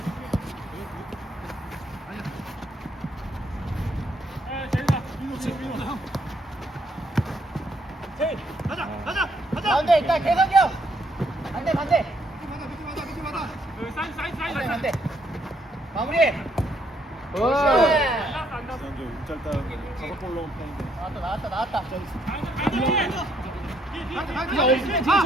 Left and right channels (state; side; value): normal; both; correlation 0.71